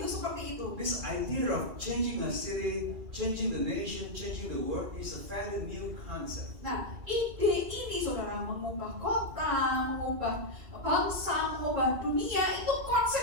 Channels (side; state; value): left; late; 2.3 ms